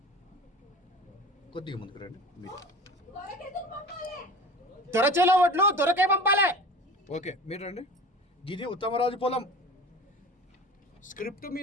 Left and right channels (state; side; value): normal; both; correlation 0.37